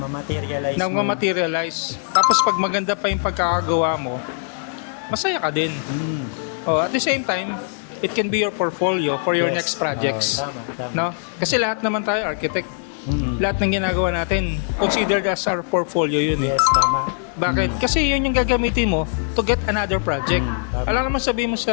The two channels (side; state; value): right; silent; 64 dB below the other